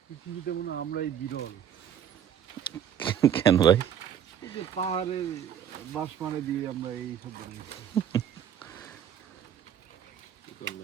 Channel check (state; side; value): quieter; left; 9.1 dB